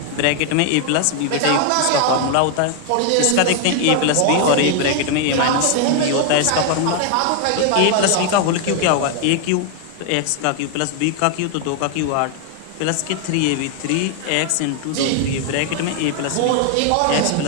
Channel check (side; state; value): both; different; correlation 0.00